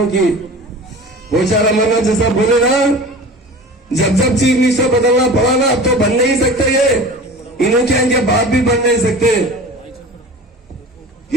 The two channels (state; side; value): normal; both; correlation 0.37